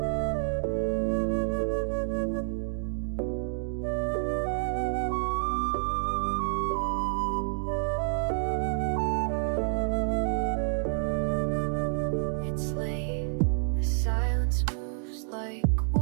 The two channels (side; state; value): left; silent; digital silence